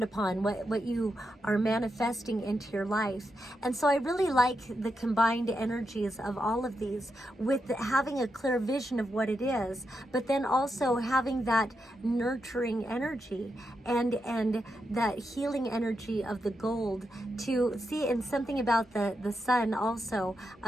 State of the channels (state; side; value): normal; both; correlation 0.85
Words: upon, what you are manifesting into your life. And so I really like the combined energies of all of these, with having a clear vision of what it is, but then also having that nurturing energy and that healing energy of the gold to see. And something about the sun also,